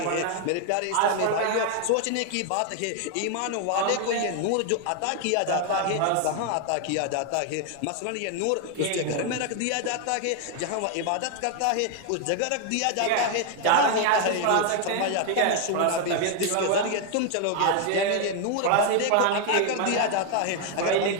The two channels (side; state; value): both; different; correlation 0.00